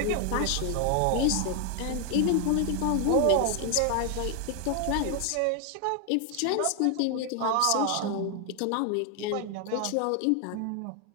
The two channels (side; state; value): both; different; correlation 0.00